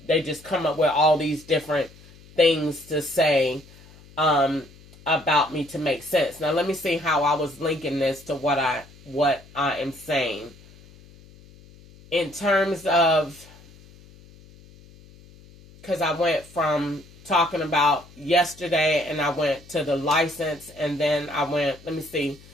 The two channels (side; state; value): left; noise; hum, 23 dB below the sound